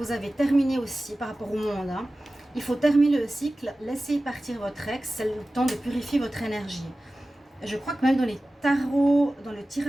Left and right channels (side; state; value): both; normal; correlation 0.96